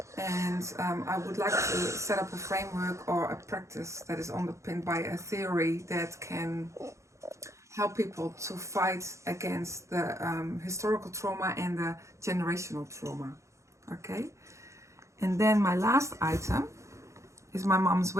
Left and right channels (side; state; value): left; late; 0.14 ms